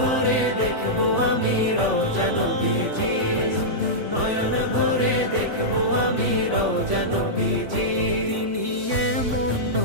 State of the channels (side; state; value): left; late; 3.5 ms